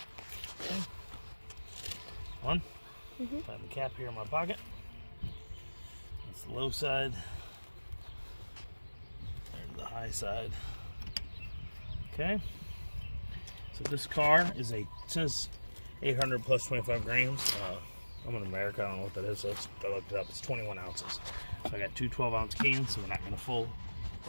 Okay. One. Put the cap here in my pocket. That's the low side. There's the high side. Okay. So this car is it says 800 plus 25 grams. I'm in America. I don't know what that is. So I looked it up. It's 21 ounces. So I got two 12-ounce cans. So we're not going to full.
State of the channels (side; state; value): both; inverted; correlation -1.00